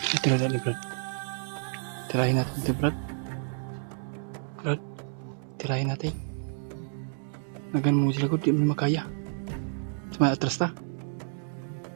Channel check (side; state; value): left; silent; digital silence